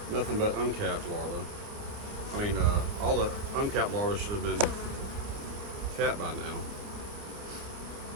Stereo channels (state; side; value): late; left; 29 ms